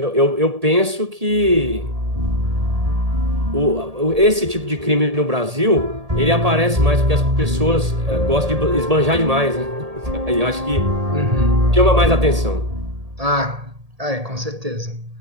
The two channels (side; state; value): left; late; 1.8 ms